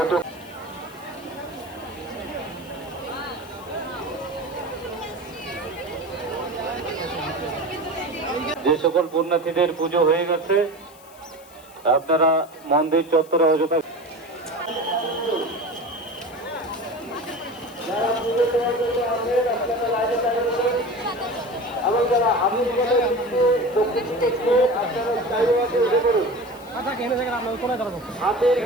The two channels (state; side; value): noise; left; hiss, 24 dB below the sound